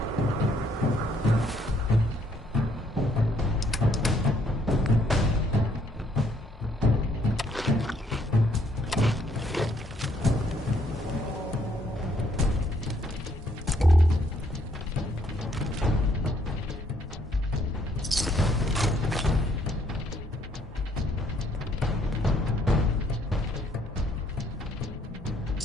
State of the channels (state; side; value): normal; both; correlation 0.68